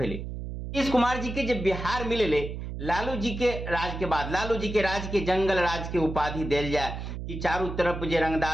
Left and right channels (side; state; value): right; noise; hum, 7 dB below the sound